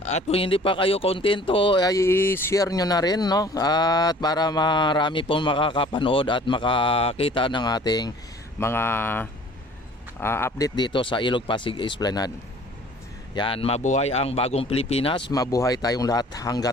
kung hindi pa kayo kontento, ay i-share nyo na rin, no? At para marami pong makakapanood at makakita ng ating mga update dito sa Ilog Pasig Esplanade. Yan, mabuhay ang bagong Pilipinas, mabuhay tayong lahat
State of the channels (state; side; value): normal; both; correlation 0.51